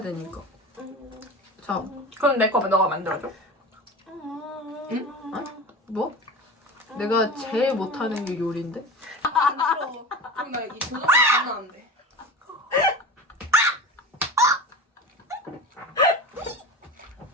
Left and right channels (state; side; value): normal; both; correlation 0.31